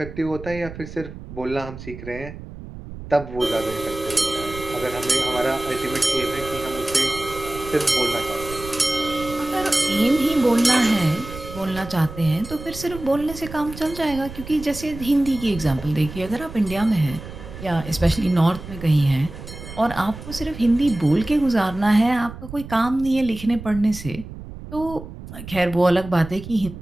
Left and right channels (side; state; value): right; noise; rumble, 13 dB below the sound